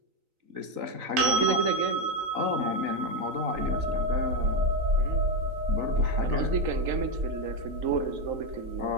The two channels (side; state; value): left; late; 3.9 ms